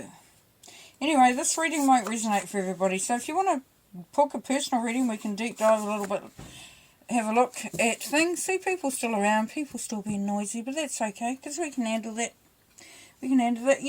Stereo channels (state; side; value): identical; both; correlation 1.00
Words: anyway, this reading might resonate for everybody. So if you want to book a personal reading, we can deep dive a little bit, have a look at things. See, people still around, people still being noisy, but that's okay, because we can handle that. We can handle that.